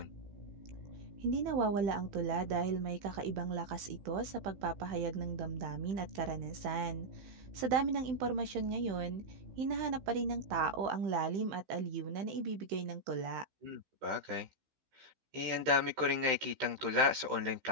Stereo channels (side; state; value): left; late; 15 ms